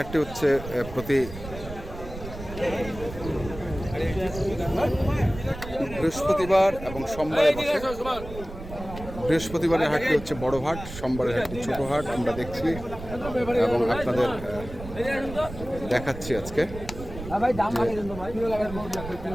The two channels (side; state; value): right; noise; rumble, 11 dB below the sound